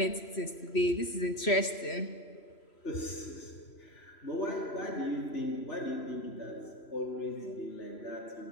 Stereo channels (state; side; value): late; right; 3.0 ms